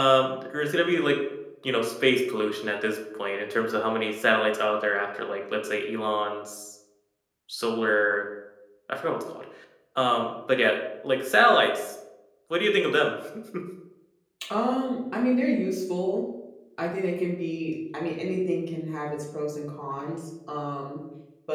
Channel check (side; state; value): both; identical; correlation 1.00